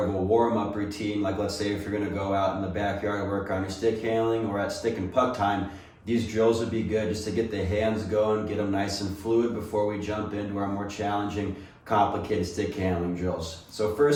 of a warm-up routine. Like, let's say if you're going to go out in the backyard and work on your stick handling, or at stick and puck time, these drills would be good just to get the hands going, get them nice and fluid before we jump into our more challenging, complicated stick handling drills. So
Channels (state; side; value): identical; both; correlation 1.00